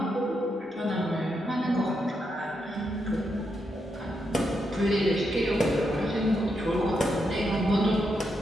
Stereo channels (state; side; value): normal; both; correlation 0.82